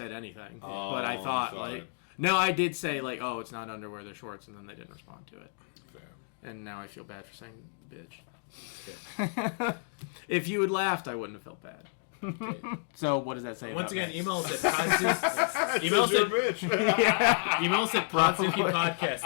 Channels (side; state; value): right; silent; digital silence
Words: anything. But I thought like, no, I did say like, "Oh, it's not underwear, they're shorts," and then they didn't respond to it. Fair. And now I feel bad for saying bitch. If you had laughed, I wouldn't have felt bad. Okay. So what does that say? Once about again, me? email us at Podzooky. Email us You're a at bitch. Email us at Podzooky Podcast